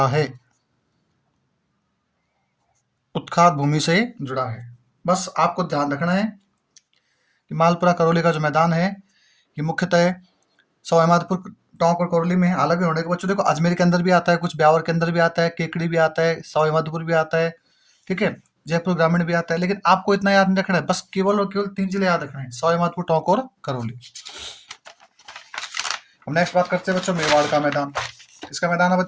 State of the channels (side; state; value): both; identical; correlation 1.00